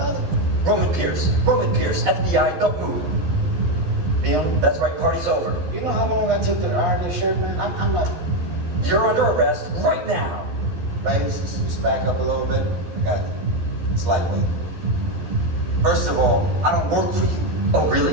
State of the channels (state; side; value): late; left; 11 ms